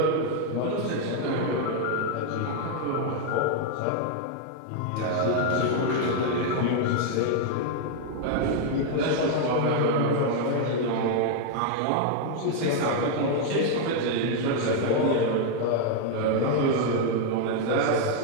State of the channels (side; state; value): both; different; correlation 0.00